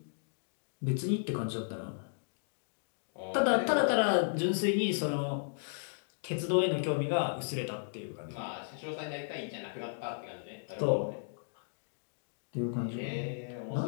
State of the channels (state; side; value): silent; right; digital silence